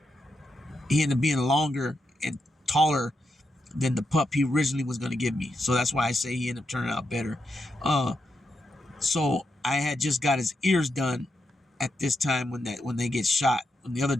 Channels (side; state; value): both; normal; correlation 0.84